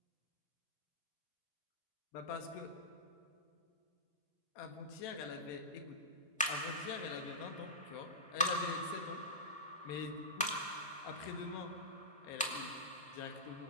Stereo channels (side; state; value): both; normal; correlation -0.17